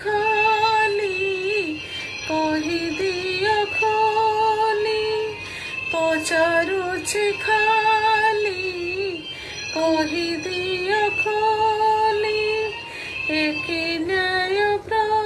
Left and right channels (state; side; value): identical; both; correlation 1.00